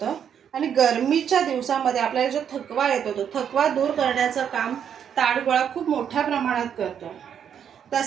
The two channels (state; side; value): quieter; left; 8.4 dB